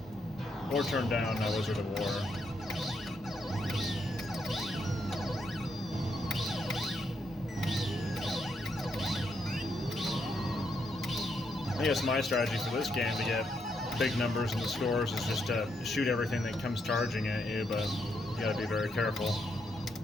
Or turn down Wizard of War. I guess my strategy for this game to get big numbers in the scores is just to shoot everything that comes charging at you, but you gotta be very careful.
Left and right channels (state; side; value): normal; both; correlation 0.78